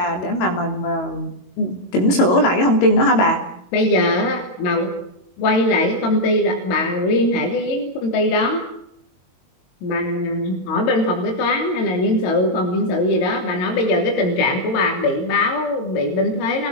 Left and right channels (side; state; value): right; late; 22 ms